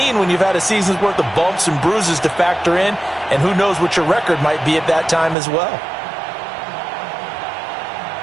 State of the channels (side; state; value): left; drops out; at 5.4 s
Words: when you've had a season's worth of bumps and bruises to factor in, and who knows what your record might be at that time as well.